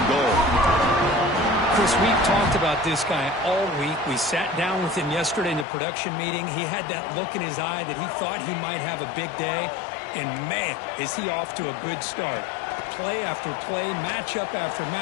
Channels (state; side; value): drops out; right; at 5.7 s